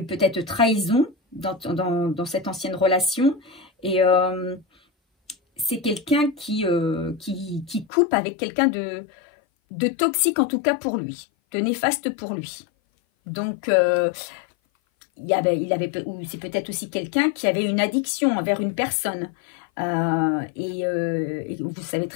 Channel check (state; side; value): drops out; right; at 7.9 s